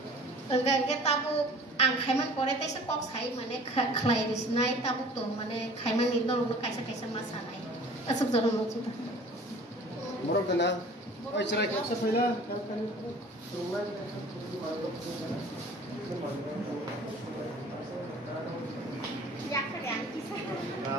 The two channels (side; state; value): both; normal; correlation 0.47